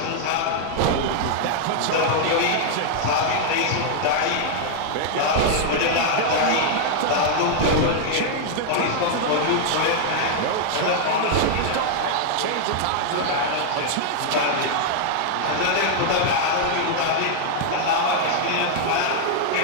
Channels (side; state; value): both; different; correlation 0.00